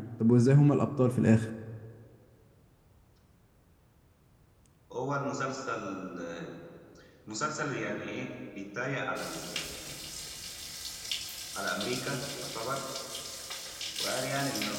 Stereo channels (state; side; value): identical; both; correlation 1.00